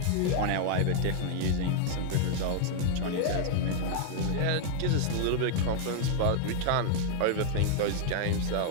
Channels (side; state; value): both; different; correlation 0.00